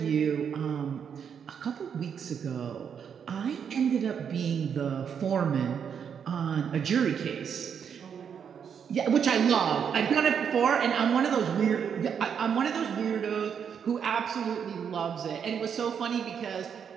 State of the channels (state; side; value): quieter; left; 7.5 dB